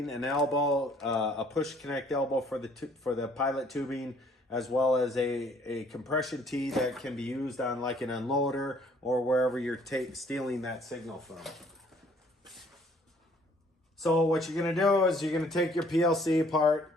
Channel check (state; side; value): normal; both; correlation 0.60